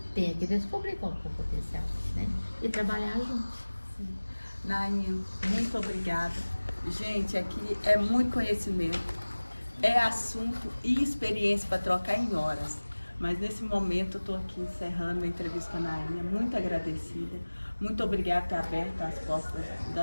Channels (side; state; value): both; inverted; correlation -1.00